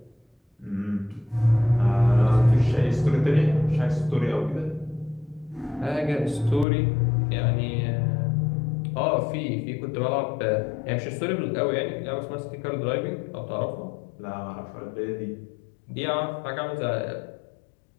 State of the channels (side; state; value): right; drops out; at 6.7 s